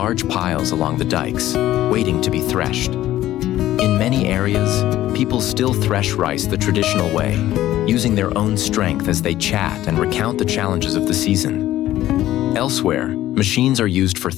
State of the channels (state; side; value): quieter; right; 14.1 dB